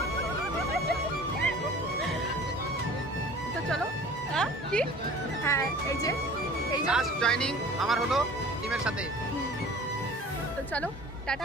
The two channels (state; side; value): normal; both; correlation 0.44